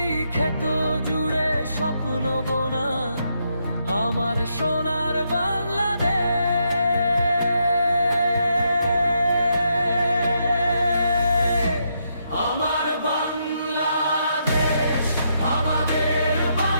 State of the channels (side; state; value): both; inverted; correlation -0.79